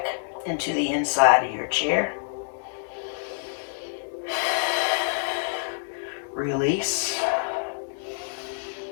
into the inside of your chair. Release.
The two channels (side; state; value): right; silent; digital silence